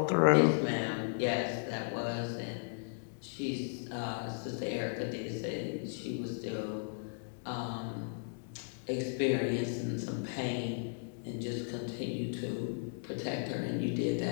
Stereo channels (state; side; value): silent; right; digital silence